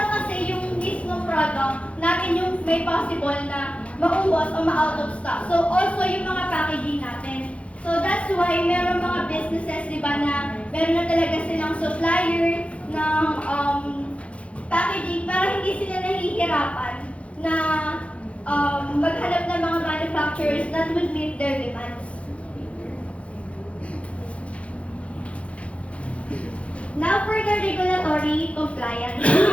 kasi yung mismong product natin yung may possible na maubos o ma-out of stock. So, also yung mga packaging natin. So, that's why meron mga businesses, di ba, na meron na talaga silang supplier ng packaging para hindi sila nahihirapan na maghanap ng mga manufacturers that would meet their demands. Now for the regulatory compliance. We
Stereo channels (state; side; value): late; right; 0.062 ms